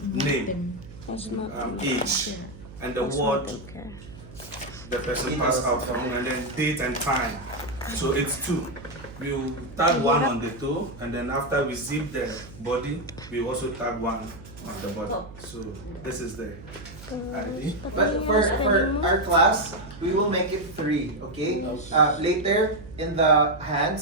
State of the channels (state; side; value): noise; right; hum, 17 dB below the sound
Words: name, age, and the ward the person passed out from, and then date and time. So it's two. We'll tag one on the toe, and then after we zip the body, we also tag one on the body. So this is the ID. But for our class, we will make it three, okay? Later in the